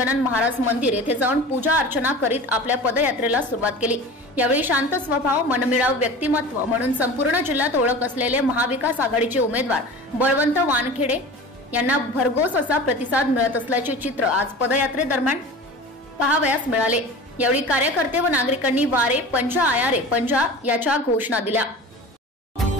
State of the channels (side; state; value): both; normal; correlation 0.36